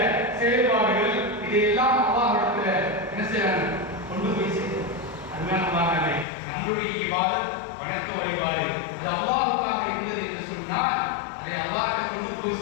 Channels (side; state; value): right; drops out; at 6.2 s